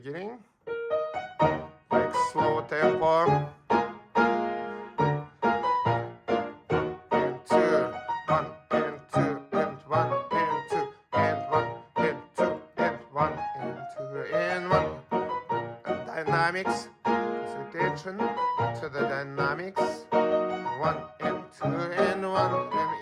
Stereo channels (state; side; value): identical; both; correlation 1.00